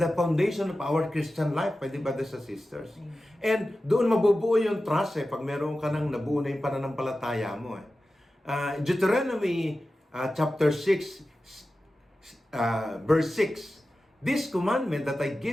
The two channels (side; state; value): both; normal; correlation 0.94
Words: foundation of our Christian life, pwede ba, brothers and sisters? Amen. And doon mabubuo yung trust pag meron ka nang nabuo na yung pananampalataya mo. Deuteronomy chapter 6, verse 6, this commandment that I